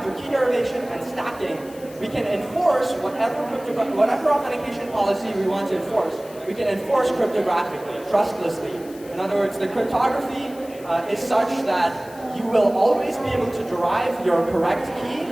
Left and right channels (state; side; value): noise; left; hiss, 22 dB below the sound